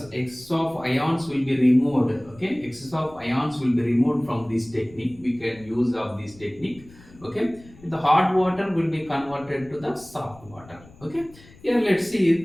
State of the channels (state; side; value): noise; left; rumble, 23 dB below the sound